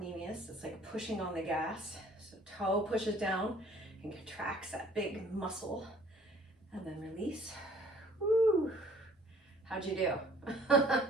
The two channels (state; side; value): normal; both; correlation 0.55